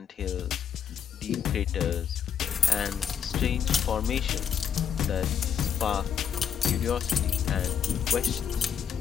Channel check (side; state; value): right; quieter; 7.9 dB